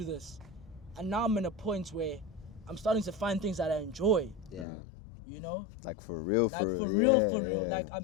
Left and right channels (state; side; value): drops out; right; at 4.7 s